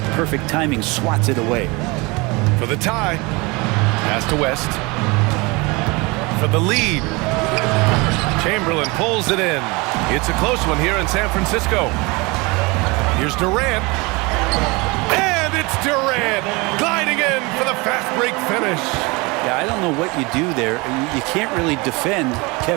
perfect timing, swats it away. For the tie, pass to West. For the lead, Chamberlain pulls it in. It's a close one here in San Francisco. Here's Durant. And it's Durant gliding in for the fast break finish. Yeah, I don't know what you do there. You can't really defend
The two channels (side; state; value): left; quieter; 25.9 dB